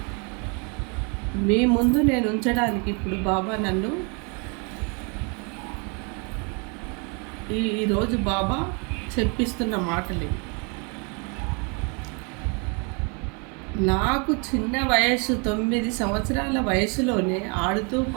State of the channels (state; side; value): quieter; left; 34.3 dB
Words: మీ ముందు నేను ఉంచడానికి ఇప్పుడు బాబా నన్ను ఈరోజు బాబా చెప్పిస్తున్న మాటలు. నాకు చిన్న వయసు 9 సంవత్సరాల వయసులోనే ఆడుతూ